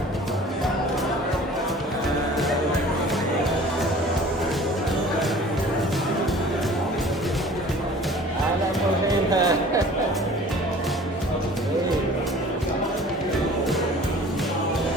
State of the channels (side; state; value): both; normal; correlation 0.46